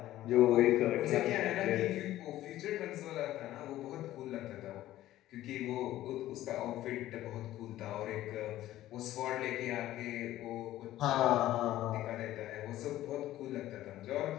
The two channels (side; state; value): right; quieter; 14.4 dB